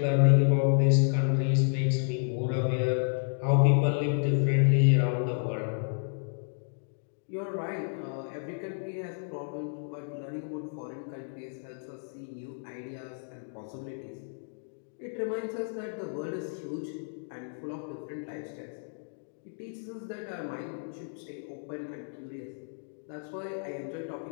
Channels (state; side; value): silent; right; digital silence